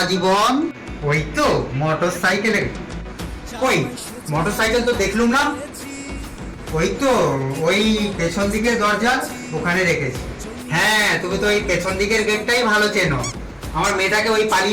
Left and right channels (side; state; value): both; identical; correlation 1.00